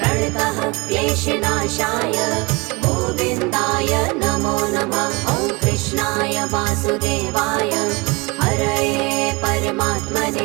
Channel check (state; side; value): quieter; left; 26.4 dB